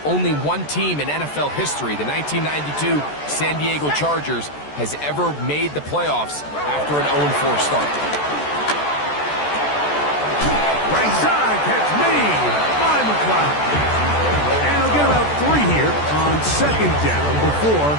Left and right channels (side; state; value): right; late; 14 ms